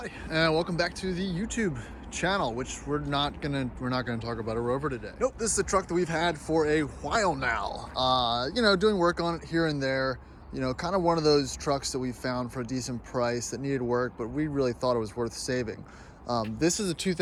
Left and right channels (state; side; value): identical; both; correlation 1.00